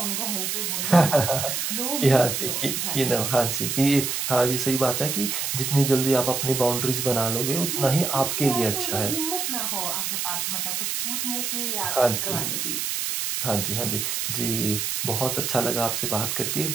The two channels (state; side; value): noise; right; hiss, 1 dB below the sound